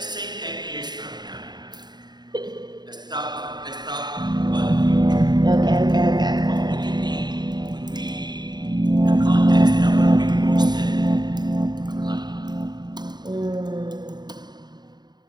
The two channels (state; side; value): late; left; 0.20 ms